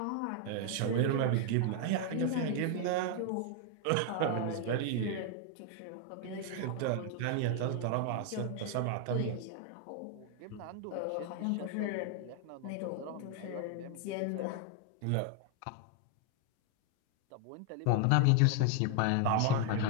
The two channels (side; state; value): both; different; correlation 0.00